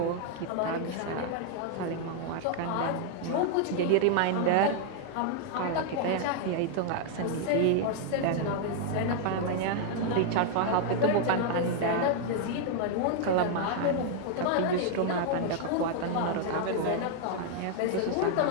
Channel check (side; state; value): both; different; correlation 0.00